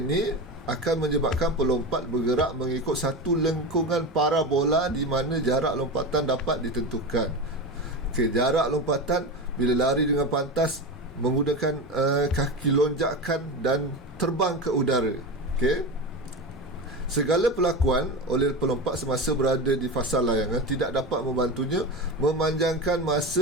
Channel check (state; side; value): normal; both; correlation 0.23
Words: akan menyebabkan pelompat bergerak mengikut satu lengkungan parabola di mana jarak lompatan dapat ditentukan. Okey, jarak lompatan bila lari dengan pantas menggunakan kaki lonjakan dan terbang ke udara. Okey, segala perlakuan oleh pelompat semasa berada di fasa layangan tidak dapat membantunya memanjangkan